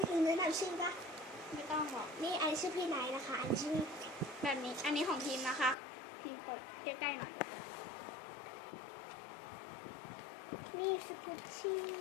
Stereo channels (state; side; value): drops out; right; at 5.8 s